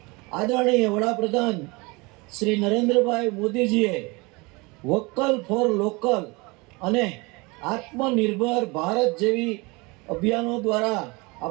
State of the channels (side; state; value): left; quieter; 26.1 dB